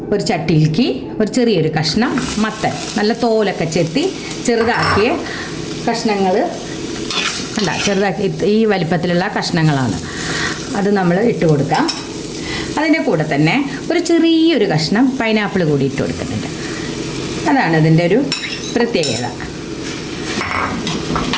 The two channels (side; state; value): both; identical; correlation 1.00